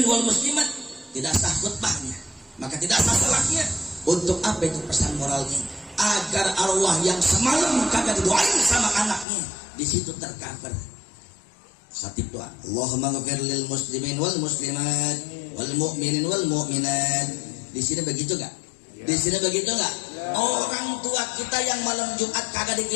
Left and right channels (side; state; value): right; drops out; at 9.2 s